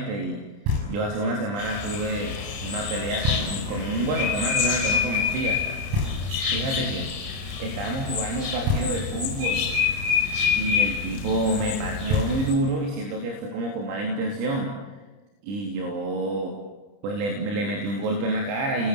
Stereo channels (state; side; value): late; left; 30 ms